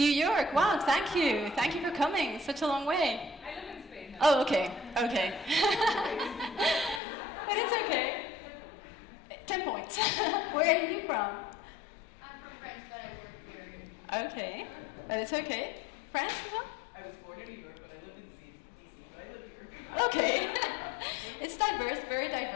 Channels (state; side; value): drops out; right; at 7.0 s